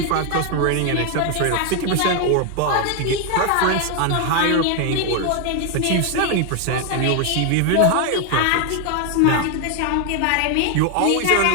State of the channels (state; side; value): different; both; correlation 0.01